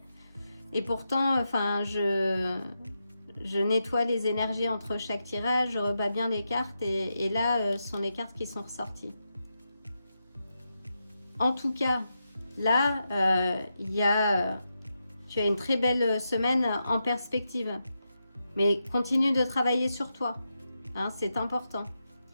Et pourtant, enfin, je nettoie les énergies entre chaque tirage, je rebats bien les cartes. Et là, ce sont les cartes qui sont ressorties. En tout cas, là, tu as une très belle semaine en perspective. Mais continue de travailler sur toi. Hein, c'est important.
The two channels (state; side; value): inverted; both; correlation -0.87